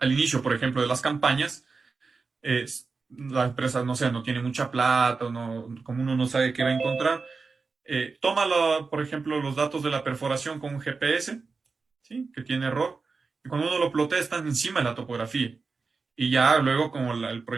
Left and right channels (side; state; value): left; quieter; 4.5 dB